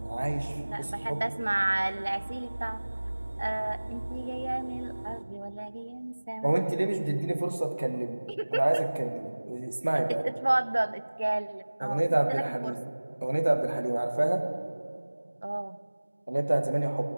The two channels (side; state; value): both; inverted; correlation -1.00